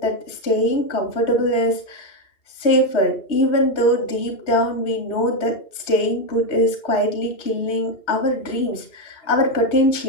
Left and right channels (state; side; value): late; right; 3.1 ms